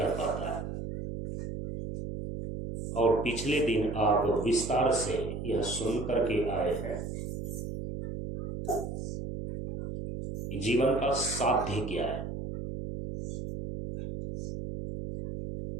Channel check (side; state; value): right; noise; hum, 6 dB below the sound